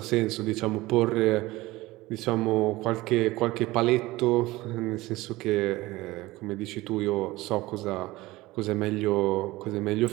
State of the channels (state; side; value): quieter; left; 19.3 dB